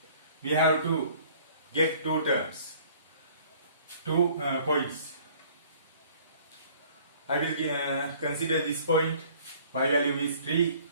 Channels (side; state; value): both; inverted; correlation -0.54